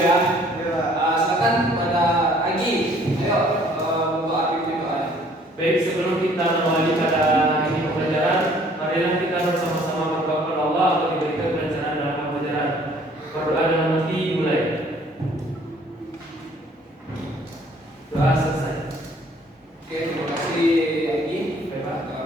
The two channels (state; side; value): normal; both; correlation 0.58